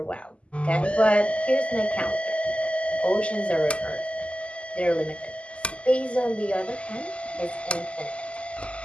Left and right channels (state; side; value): late; right; 0.057 ms